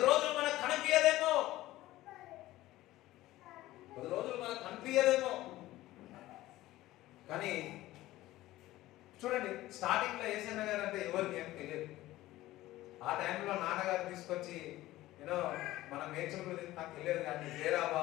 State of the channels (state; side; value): quieter; right; 16.4 dB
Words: రోజులు మనకు కనిపించదేమో, కానీ చూడండి, స్టార్టింగ్ లో యేసన్న గారు అంటే ఎవరికి ఏం తెలియదు. ఆ టైంలో నాన్నగారు తీసుకొచ్చి మన మేడ్చల్ గురించి నాకు తెలియదు, కానీ